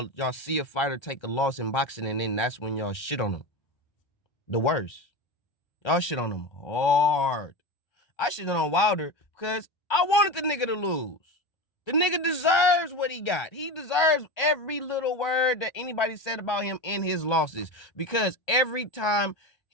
see a fighter take a loss in boxing, and then that's when y'all shit on them. The worst. Y'all shit on them hard. I shit on Wilder because I wanted the nigga to lose. The nigga deserves what he got. He deserves every little word that anybody said about him in his losses. Because every time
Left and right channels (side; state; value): right; late; 1.3 ms